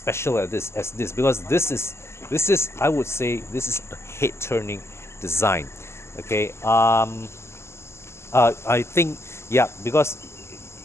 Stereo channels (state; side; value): late; right; 0.13 ms